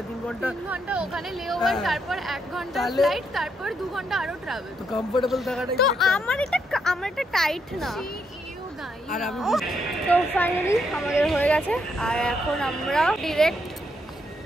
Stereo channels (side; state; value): both; normal; correlation 0.77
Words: ঘন্টা ওখানে লেওভার, তারপর 1 ঘন্টা ফ্লাইট, তারপর 2 ঘন্টা আরো ট্রাভেল। তো কমফোর্টেবল থাকাটাই তো আমার এটা টাইট না। আর আমি তো ফাইনালি আমাদের হয়ে গেছে, আর এখন আমরা ডিরেক্ট